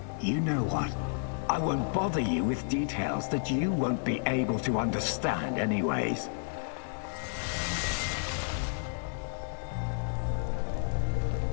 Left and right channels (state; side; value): silent; right; 57 dB below the other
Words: You know what? I won't bother you with details that you won't be able to understand anyways.